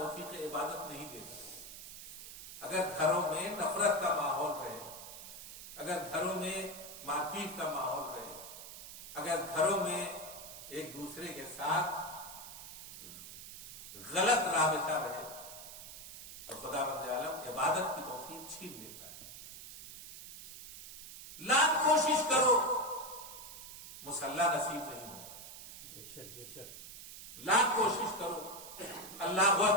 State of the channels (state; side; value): noise; right; hiss, 13 dB below the sound